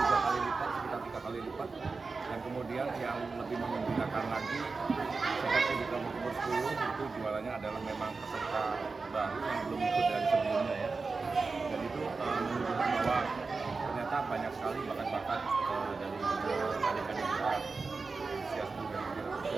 kali lipat, sekitar 3 kali lipat. Dan kemudian yang lebih menggembirakan lagi, seperti di kelompok umur 10 itu jualannya adalah memang peserta baru yang belum ikut dari sebelumnya ya. Dan itu menunjukkan bahwa ternyata banyak sekali bakat-bakat dari adik-adik kita usia 10 dan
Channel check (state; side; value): quieter; left; 4.2 dB